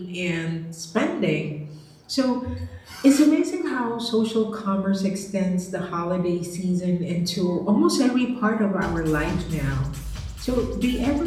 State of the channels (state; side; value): identical; both; correlation 1.00